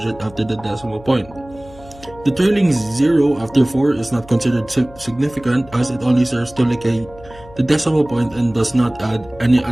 after the decimal point. The trailing 0 after 4 is not considered significant, as it only serves to locate the decimal point and does not add any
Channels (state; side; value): noise; left; hum, 21 dB below the sound